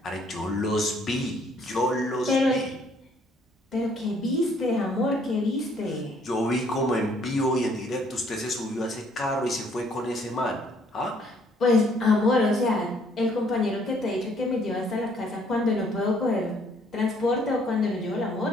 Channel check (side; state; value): both; normal; correlation 0.64